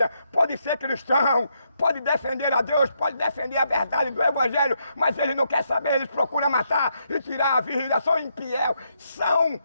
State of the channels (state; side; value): inverted; both; correlation -0.78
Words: pode ser cristão, pode defender a Deus, pode defender a verdade do Evangelho, mas ele não quer saber, eles procuram matar e tirar a vida, são infiel, são